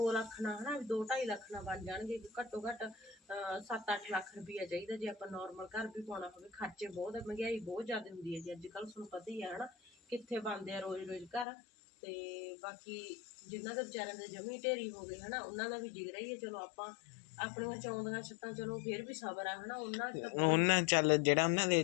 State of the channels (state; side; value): drops out; right; at 11.5 s